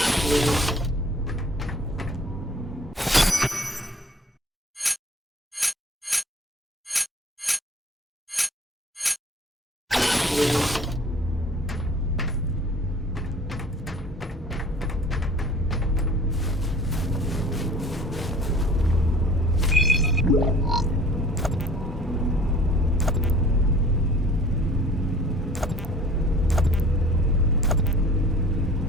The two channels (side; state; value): both; normal; correlation 0.49